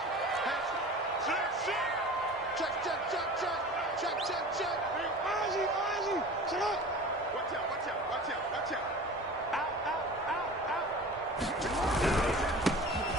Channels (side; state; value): both; normal; correlation 0.38